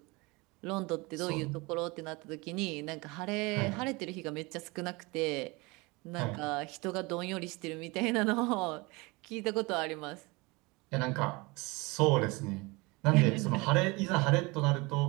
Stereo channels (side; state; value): left; quieter; 25.2 dB